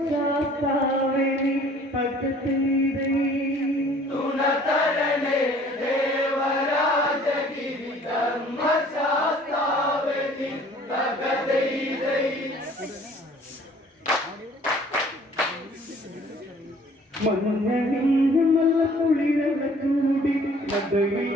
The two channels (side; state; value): both; normal; correlation 0.54